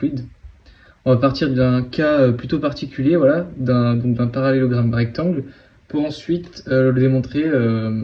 On va partir d'un cas plutôt particulier, voilà, d'un parallélogramme rectangle, pour ensuite le démontrer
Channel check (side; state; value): both; identical; correlation 1.00